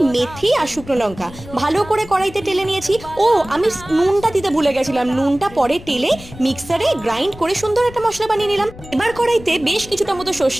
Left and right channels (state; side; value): noise; left; rumble, 17 dB below the sound